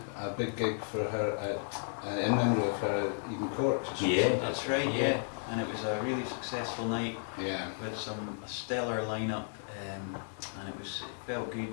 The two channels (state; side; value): silent; right; 55 dB below the other